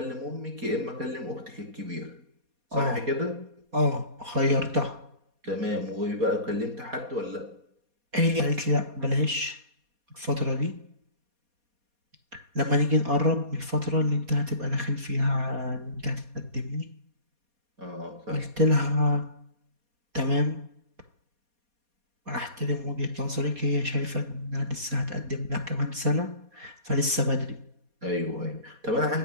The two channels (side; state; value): left; late; 4.2 ms